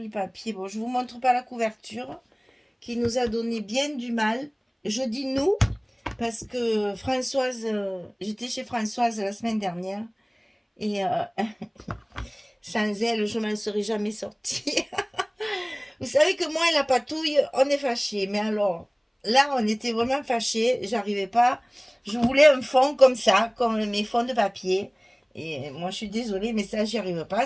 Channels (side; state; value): both; identical; correlation 1.00